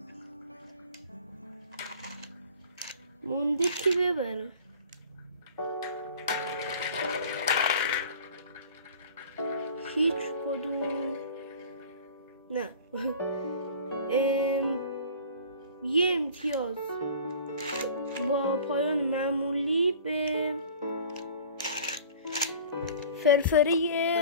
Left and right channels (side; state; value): both; inverted; correlation -0.44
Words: مونده کی ببره. هیچ کدوم نه. یه امتیاز با پایان معمولی به